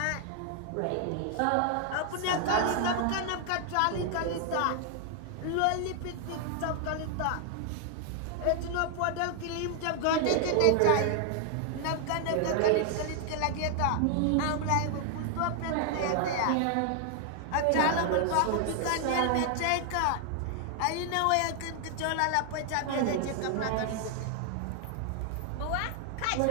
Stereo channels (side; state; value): both; different; correlation 0.00